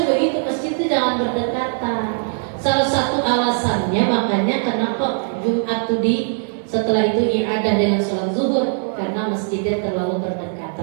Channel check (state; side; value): silent; left; 66 dB below the other